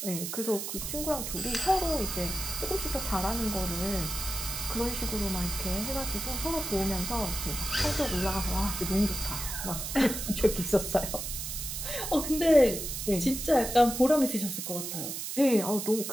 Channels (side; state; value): right; noise; hiss, 5 dB below the sound